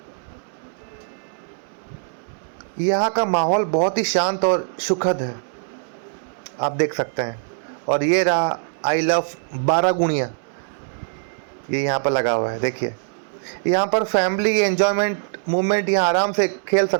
यहाँ का माहौल बहुत ही शांत और सुखद है, आप देख सकते हैं। और ये रहा आई लव बारागुणिया, ये यहाँ पर लगा हुआ है। देखिए यहाँ पर फैमिली एंजॉयमेंट मूवमेंट यहाँ आराम से खेल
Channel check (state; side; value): silent; left; digital silence